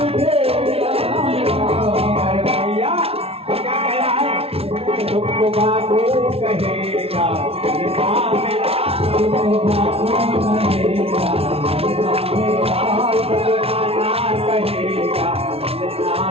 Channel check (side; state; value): left; late; 0.29 ms